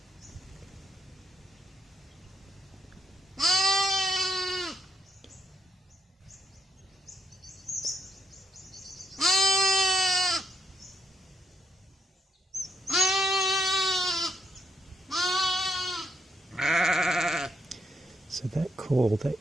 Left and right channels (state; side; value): normal; both; correlation 0.78